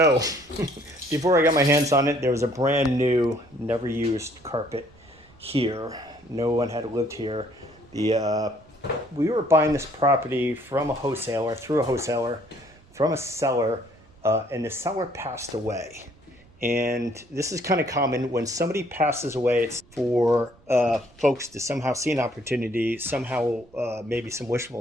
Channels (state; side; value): noise; right; rumble, 27 dB below the sound